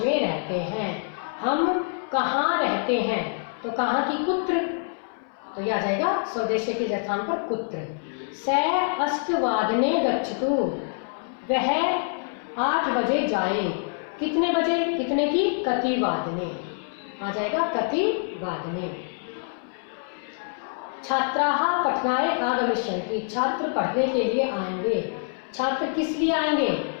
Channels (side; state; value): right; silent; 61 dB below the other